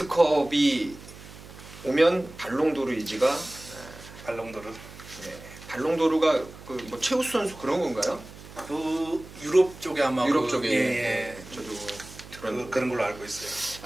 오면 발롱도르 이지가 발롱도르. 예, 발롱도르가 그 뭐 최우수 선수 그런 건가요? 그 유럽 쪽에 아마 유럽 쪽에 예. 저도 들었는데 그런 걸로 알고 있어요.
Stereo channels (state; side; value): noise; right; hum, 17 dB below the sound